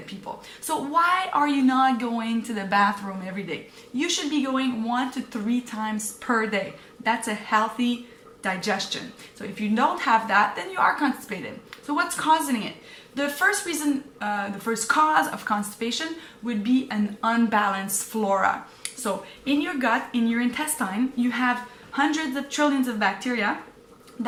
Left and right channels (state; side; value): identical; both; correlation 1.00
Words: people. So why are you not going to the bathroom every day? You should be going 1 to 3 times per day. That's a healthy digestion. So if you don't have that, then you are constipated. So what's causing it? The first reason, the first cause of constipation would be an unbalanced flora. So in your gut, in your intestine, you have hundreds of trillions of bacteria